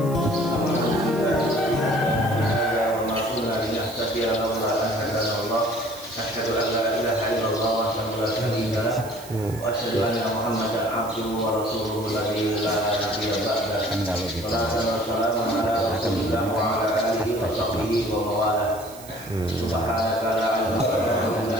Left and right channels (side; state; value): right; noise; hiss, 18 dB below the sound